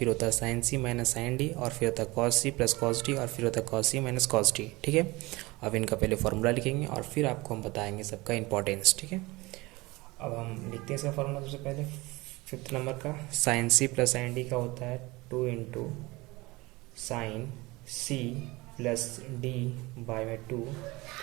होता है sine C minus sine D, और फिर होता है cos C plus cos D, और फिर होता है cos C minus cos D. ठीक है, अब इनका पहले फॉर्मूला लिखेंगे और फिर आपको हम बताएंगे सबका इंपॉर्टेंस। ठीक है, अब हम लिखते हैं इसका फॉर्मूला। सबसे पहले फिफ्थ नंबर का sine C plus sine D का होता है 2 into sine C plus D by में 2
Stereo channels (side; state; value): left; quieter; 22.2 dB